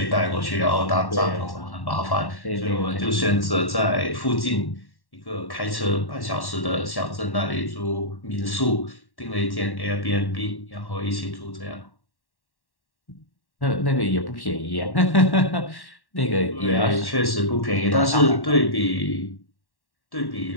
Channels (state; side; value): late; right; 1.1 ms